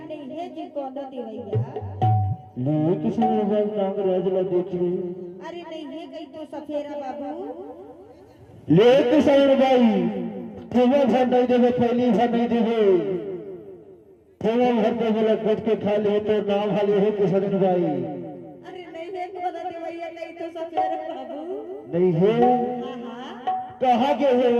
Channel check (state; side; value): identical; both; correlation 1.00